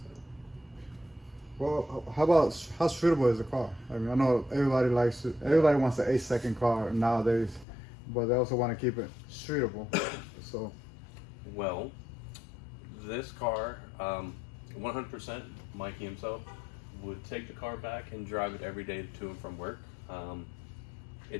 Well, how streetable is the car? I mean, I know everybody wants an 8-second car nowadays, but they also want to keep it streetable. So, well, this car, 100%, Mikey himself would take the car back and drive it every day to and from work.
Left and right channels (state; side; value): drops out; right; at 7.7 s